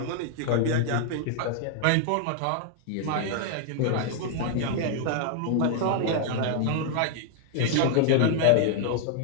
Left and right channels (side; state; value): both; different; correlation 0.00